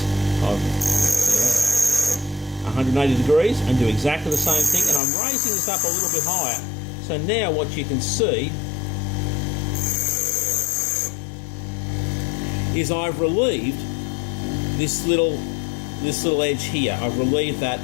180 degrees and do exactly the same thing. And I'm raising this up a little bit higher. So now what you can see is I've relieved this little edge here. I've relieved that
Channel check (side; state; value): right; drops out; at 5.0 s